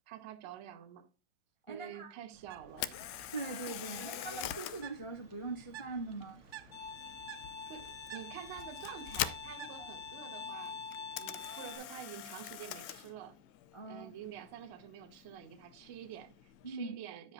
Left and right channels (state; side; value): late; right; 2.0 ms